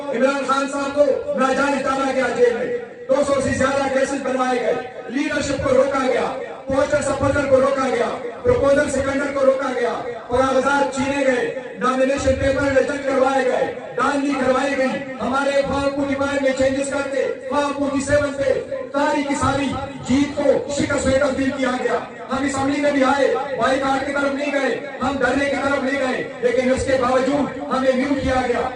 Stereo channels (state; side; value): identical; both; correlation 1.00